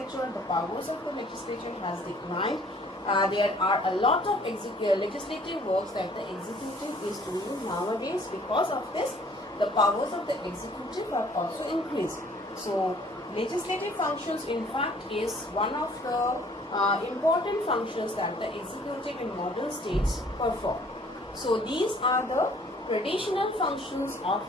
the powers of the legislature has declined. There are a lot of legislative works that the executive is doing nowadays. Because of this, the powers of the executive have also increased. So, legislative functions in fact is one of the important functions that the executive in modern states perform. So, these are the traditional functions of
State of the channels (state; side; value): normal; both; correlation 0.57